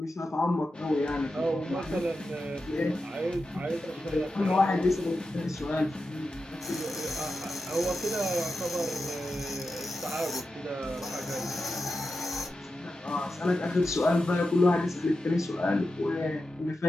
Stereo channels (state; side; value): normal; both; correlation 0.90